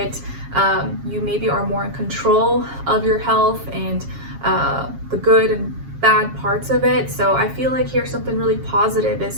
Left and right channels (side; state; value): left; late; 7.3 ms